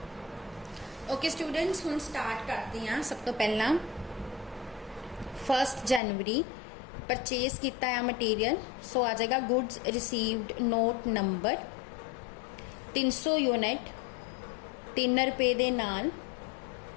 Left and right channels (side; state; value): right; drops out; at 6.0 s